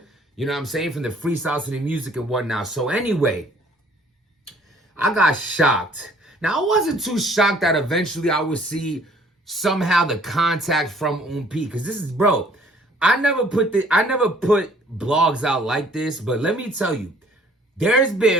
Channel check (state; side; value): normal; both; correlation 0.58